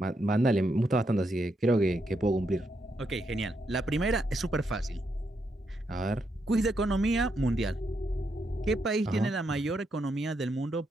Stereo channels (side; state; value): both; normal; correlation 0.80